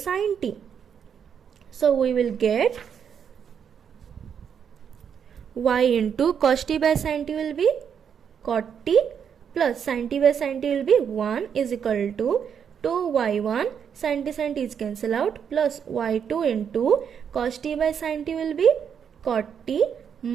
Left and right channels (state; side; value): quieter; left; 7.7 dB